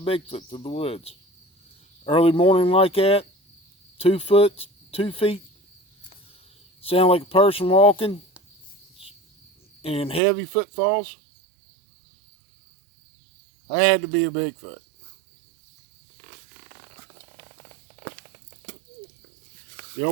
through the woods. Early morning like that, 2 feet, sound like a person walking, and heavy footfalls. That had to be a Bigfoot. They're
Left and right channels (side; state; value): left; drops out; at 10.2 s